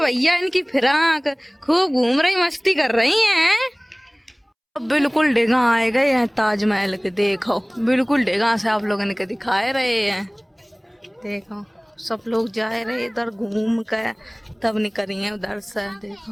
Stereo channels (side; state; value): both; identical; correlation 1.00